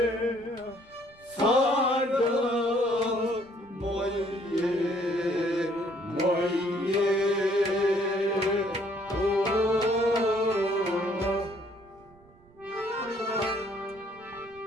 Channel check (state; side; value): noise; right; rumble, 27 dB below the sound